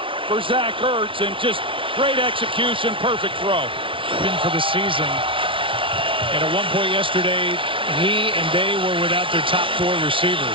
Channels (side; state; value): left; late; 0.25 ms